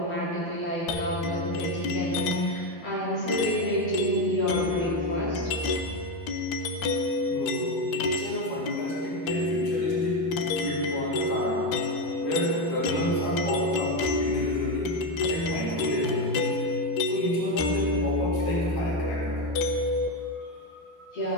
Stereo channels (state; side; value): late; right; 13 ms